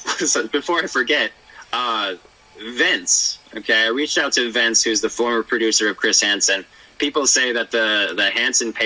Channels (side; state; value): both; identical; correlation 1.00